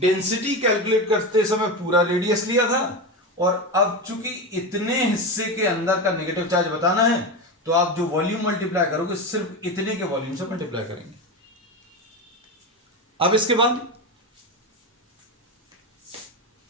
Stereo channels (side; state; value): both; normal; correlation 0.19